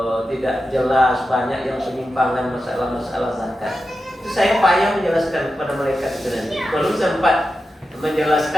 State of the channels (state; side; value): normal; both; correlation 0.91